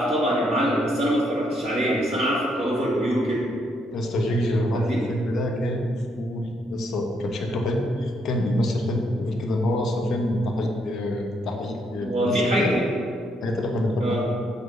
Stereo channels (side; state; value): both; normal; correlation 0.74